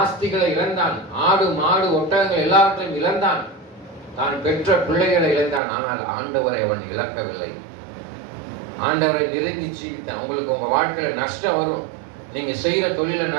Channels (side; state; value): left; drops out; at 5.6 s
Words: ஆஸ்திகளை இழந்தான். ஆடு மாடு ஒட்டகங்கள் எல்லாவற்றையும் இழந்தான். தான் பெற்ற பிள்ளைகளை இழந்தான். ஆனால் ஆண்டவரை அவன் இழக்கவில்லை. ஆண்டவரை நெருங்கி ஜீவித்தான். உங்களுக்கு உங்க வாழ்க்கையில நஷ்டம் வரும். நீங்க செய்யற தொழில